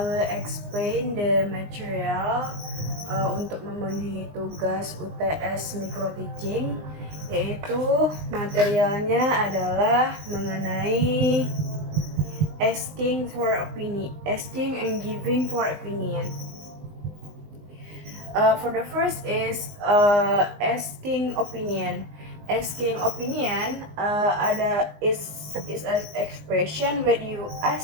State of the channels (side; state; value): left; late; 20 ms